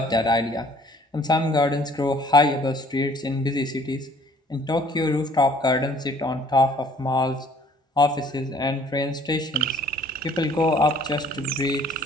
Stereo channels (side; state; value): both; normal; correlation 0.56